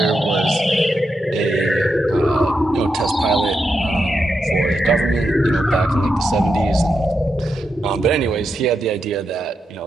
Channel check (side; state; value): both; normal; correlation 0.85